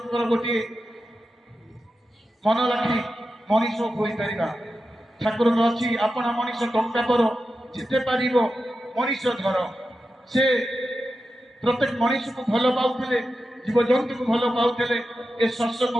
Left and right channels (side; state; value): both; normal; correlation 0.91